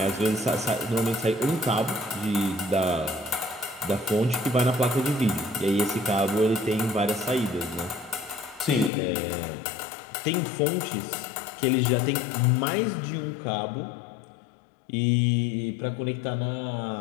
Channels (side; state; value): right; drops out; at 8.9 s